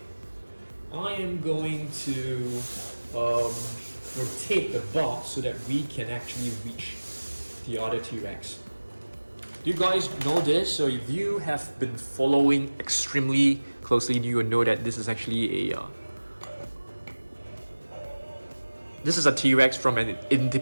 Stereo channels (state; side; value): inverted; both; correlation -1.00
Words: I am going to rotate the box so that we can actually reach the other T-Rex. You guys know this, so if you have been following extremely closely, you will know that this is actually a T-Rex from an